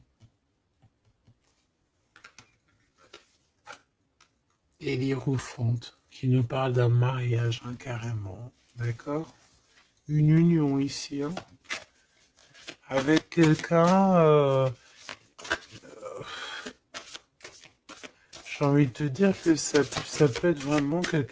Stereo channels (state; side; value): identical; both; correlation 1.00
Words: Et l'Hiérophante, qui nous parle d'un mariage, hein, carrément. D'accord? Une union ici, hein, avec quelqu'un, j'ai envie de te dire que ça peut être vraiment